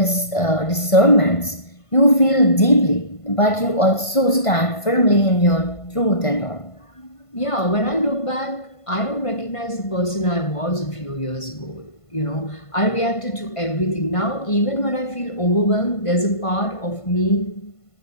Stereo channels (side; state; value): right; late; 1.5 ms